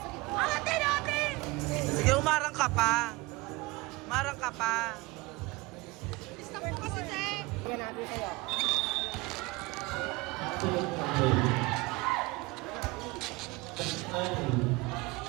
gitna. Atin! Atin! Sige, umarang ka pa. Marang ka pa. Stop mo kasi, Che! Yan natin sa'yo.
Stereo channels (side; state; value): left; quieter; 22.8 dB